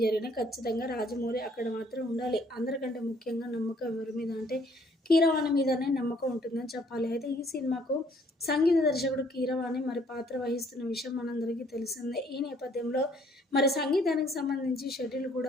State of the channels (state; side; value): normal; both; correlation 0.62